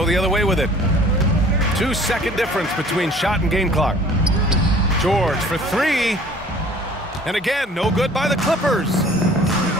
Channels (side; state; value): both; normal; correlation 0.51